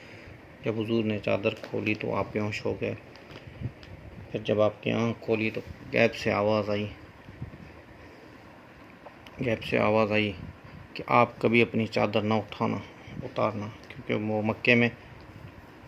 جب حضور نے چادر کھولی تو آپ بیہوش ہو گئے۔ پھر جب آپ کی آنکھ کھولی تو غیب سے آواز آئی کہ آپ کبھی اپنی چادر نہ اتارنا، کیونکہ وہ مکے میں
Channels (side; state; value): both; identical; correlation 1.00